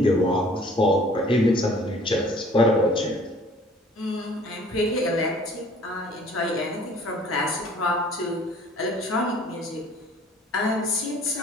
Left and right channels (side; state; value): both; normal; correlation 0.53